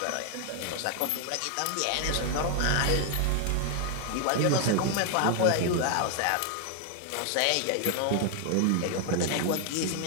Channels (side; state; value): both; different; correlation 0.00